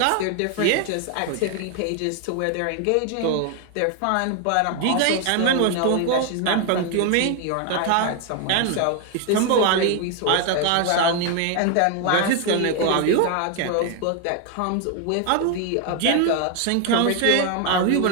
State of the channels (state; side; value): different; both; correlation 0.01